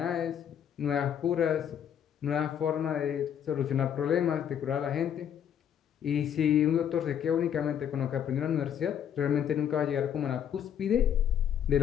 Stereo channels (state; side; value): quieter; right; 9.1 dB